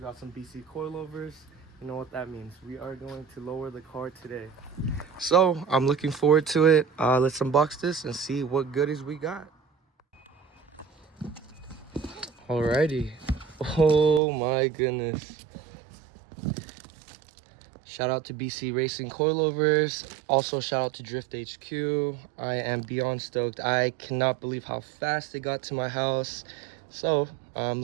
got some BC coilovers. You know what that means. We are going to lower the car today. So I'm looking forward to it. Let's unbox this and see what goodies we got. Alrighty. Oh my goodness. Shout out to BC Racing Coilovers. Also shout out to Drift HQ. I am beyond stoked. I cannot believe how fast it got to my house. So I'm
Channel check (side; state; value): left; drops out; at 14.2 s